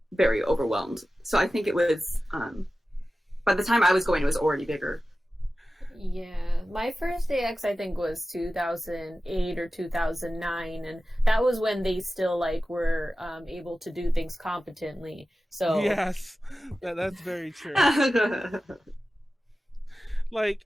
very overwhelmed. So I think it was by the time I was going, it was already bigger. Yeah, my first AX I think was 2008 or 2009, and that was when they still were able to do things competently. So yes, that's very true. AX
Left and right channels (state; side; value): normal; both; correlation 0.95